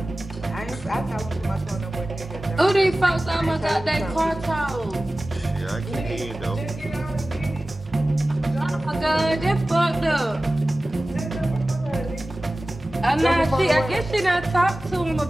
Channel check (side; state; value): both; normal; correlation 0.96